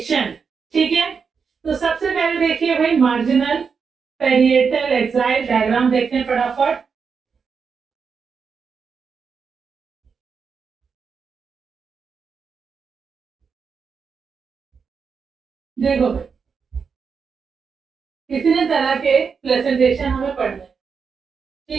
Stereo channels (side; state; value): left; quieter; 5.8 dB